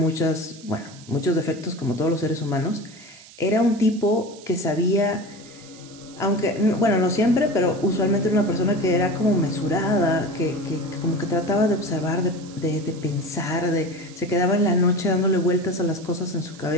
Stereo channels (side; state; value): right; noise; hiss, 21 dB below the sound